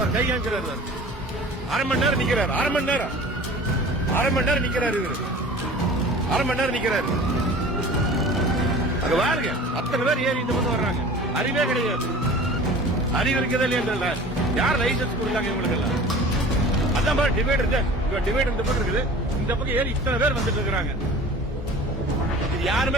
கை காமிக்கிறாரு, அரை மணி நேரம் நிக்கிறாரு, அரை மணி நேரம் நிக்கிறாரு, இவரு அரை மணி நேரம் நிக்கிறாரு. அங்க பாருங்க, அத்தனை பேர் ஏறி இந்த பக்கம் வர்றாங்க. அறிவே கிடையாது, அறிவு இருக்கதே இல்லையா? யார் லைசன்ஸ் கொடுத்தாங்க இவங்களுக்கு எல்லாம்? அதான் பாரு டிவைட் இந்த பக்கம் இருக்குது, இந்த பக்கம் ஏறி இத்தனை பேர் வந்துட்டு இருக்காங்க. இது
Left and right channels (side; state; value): both; normal; correlation 0.42